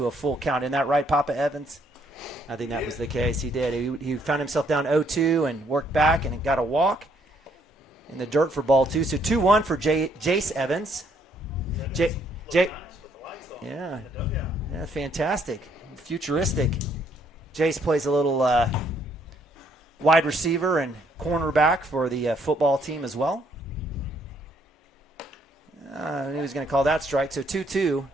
a full count. Isn't that right, Papa Evans? I think that was the case. He did. He found himself down 0-2 and worked back and got a walk in the dirt for ball 2. So 2-1 for Jace Evans. Yeah, fantastic. Futuristic. Jace plays a little wide receiver and cornerback for the football team as well. I knew he was going to call that strike. So 2-2.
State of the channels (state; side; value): normal; both; correlation 0.68